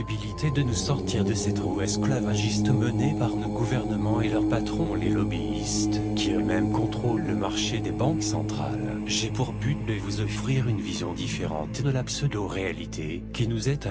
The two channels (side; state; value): both; identical; correlation 1.00